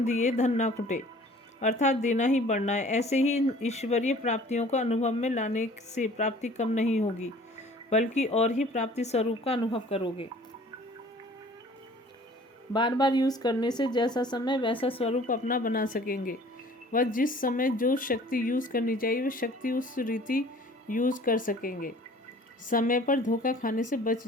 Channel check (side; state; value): both; normal; correlation 0.50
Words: दिए धन ना खुटे, अर्थात देना ही बढ़ना है। ऐसे ही ईश्वरीय प्राप्तियों को अनुभव में लाने से प्राप्ति कम नहीं होगी, बल्कि और ही प्राप्ति स्वरूप का अनुभव करोगे। बार बार यूज़ करने से जैसा समय वैसा स्वरूप अपना बना सकेंगे। वह जिस समय जो शक्ति यूज़ करनी चाहिए वह शक्ति उस रीति यूज़ कर सकेंगे। समय पर धोखा खाने से बच